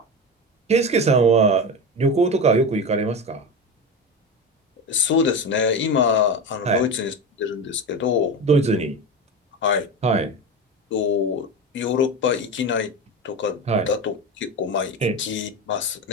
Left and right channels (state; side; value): normal; both; correlation 0.23